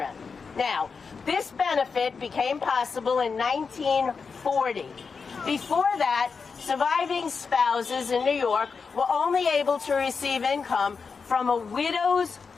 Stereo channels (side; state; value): right; quieter; 5.2 dB